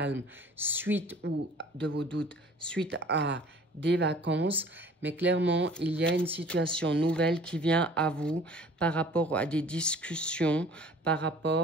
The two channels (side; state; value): both; normal; correlation 0.49